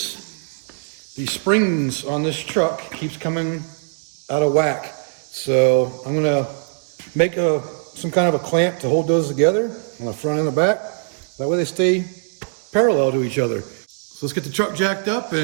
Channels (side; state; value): left; silent; digital silence